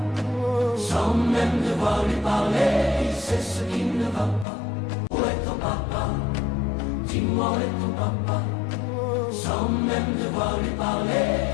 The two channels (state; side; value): drops out; right; at 4.5 s